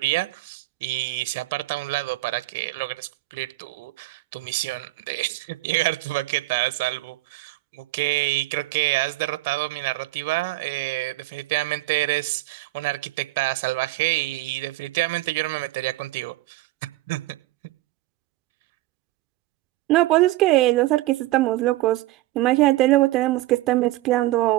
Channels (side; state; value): left; quieter; 18.1 dB